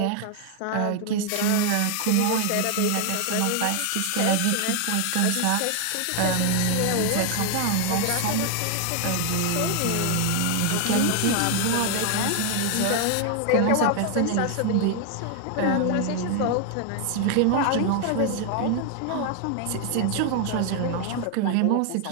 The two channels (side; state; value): both; different; correlation 0.00